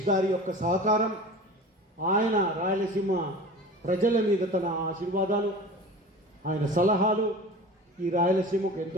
గారి యొక్క సహకారం, ఆయన రాయలసీమ ప్రజల మీద తన ఆశీర్వాదాలు, ఆయన సలహాలు ఈ రాయలసీమకు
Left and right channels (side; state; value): both; normal; correlation 0.37